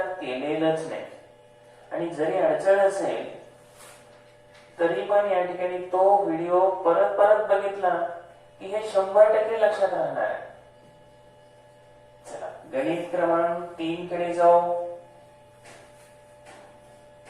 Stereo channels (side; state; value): both; identical; correlation 1.00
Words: केलेलंच नाही. आणि जरी अडचण असेल तरी पण या ठिकाणी तो व्हिडिओ परत परत बघितला की हे 100% लक्षात राहणार आहे. चला गणित क्रमांक 3 कडे जाऊ.